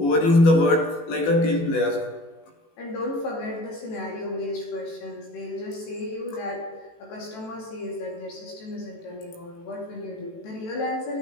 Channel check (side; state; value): right; late; 18 ms